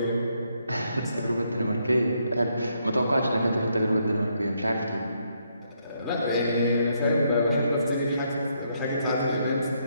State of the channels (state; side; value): inverted; both; correlation -0.75